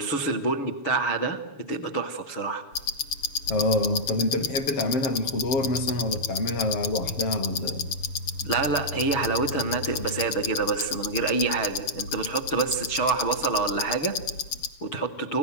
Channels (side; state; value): right; late; 7.1 ms